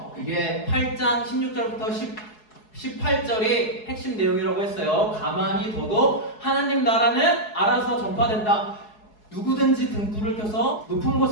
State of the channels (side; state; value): right; late; 4.7 ms